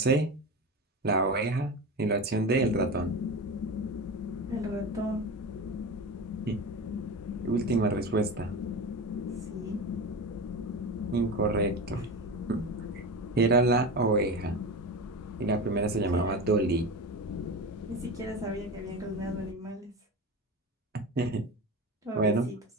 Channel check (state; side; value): normal; both; correlation 0.25